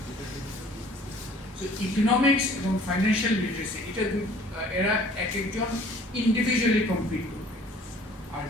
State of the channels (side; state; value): both; normal; correlation 0.53